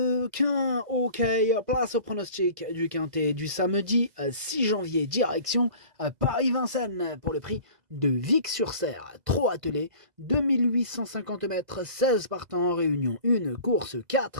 Ok, place au pronostic du quintet du samedi 6 janvier, direction Paris-Vincennes pour le prix de Vic-sur-Serre. Trop attelé, 2850 mètres, 16 partants en réunion, une course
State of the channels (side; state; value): left; late; 2.0 ms